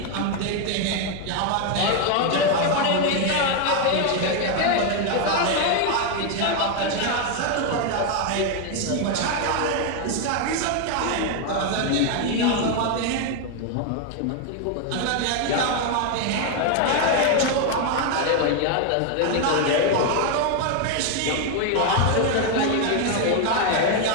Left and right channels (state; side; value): different; both; correlation 0.01